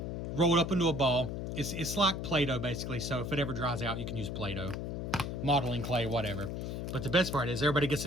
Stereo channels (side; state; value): left; noise; hum, 4 dB below the sound